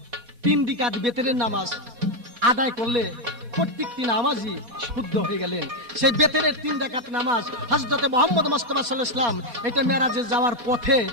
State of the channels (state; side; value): late; left; 4.4 ms